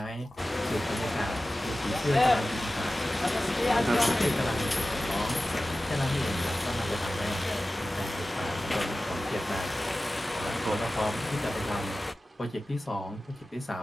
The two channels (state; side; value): normal; both; correlation 0.95